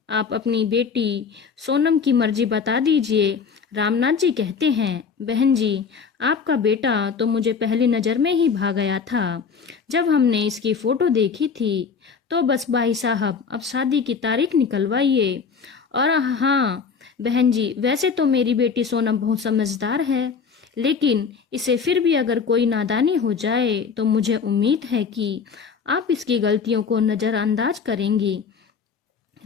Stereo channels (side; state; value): right; quieter; 5.9 dB